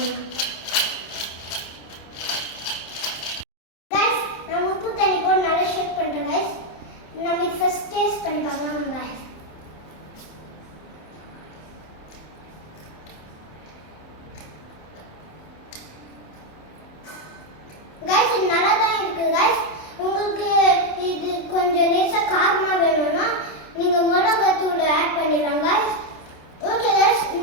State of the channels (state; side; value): late; right; 27 ms